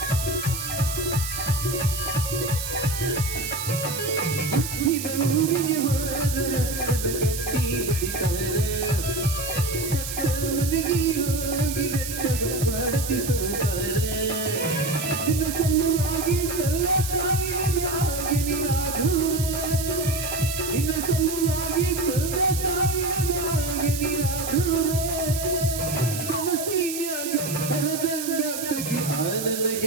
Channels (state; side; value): noise; right; hiss, 6 dB below the sound